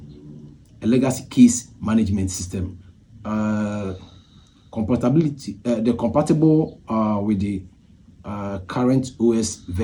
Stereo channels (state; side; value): identical; both; correlation 1.00